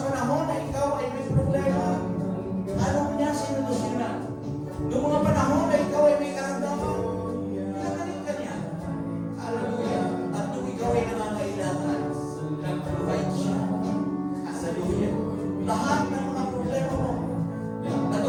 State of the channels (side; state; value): both; identical; correlation 1.00